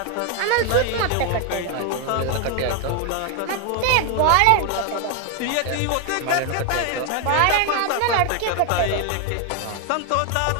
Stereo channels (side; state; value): both; different; correlation 0.01